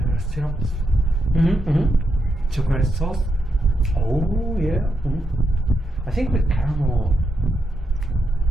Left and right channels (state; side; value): normal; both; correlation 0.83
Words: syrups. Chocolate sauce. Oh, yeah. I think with caramel,